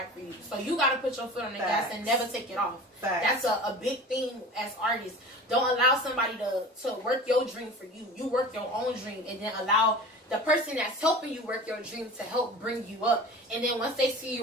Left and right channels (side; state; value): both; normal; correlation 0.37